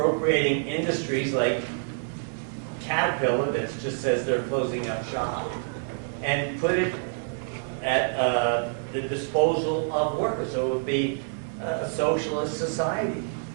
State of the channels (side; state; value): left; silent; 60 dB below the other